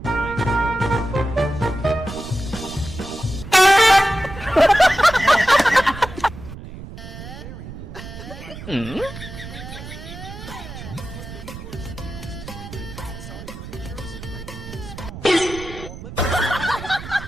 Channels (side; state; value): right; noise; rumble, 12 dB below the sound